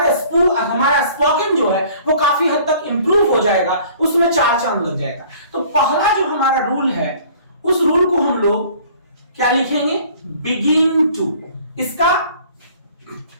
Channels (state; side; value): inverted; both; correlation -0.52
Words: स्पोकन जो है वो काफी हद तक इंप्रूव हो जाएगा, उसमें चार चांद लग जाएगा। तो पहला जो हमारा रूल है, उस रूल को हम लोग क्या लिखेंगे? Begin to. इसका